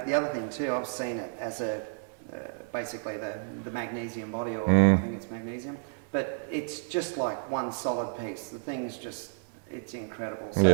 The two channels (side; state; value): left; silent; digital silence